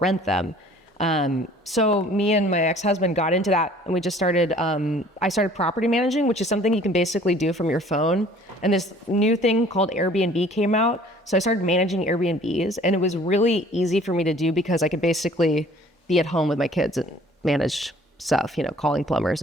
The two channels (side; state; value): both; normal; correlation 0.53